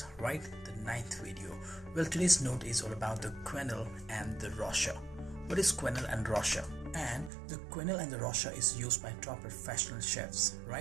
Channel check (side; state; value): left; drops out; at 7.3 s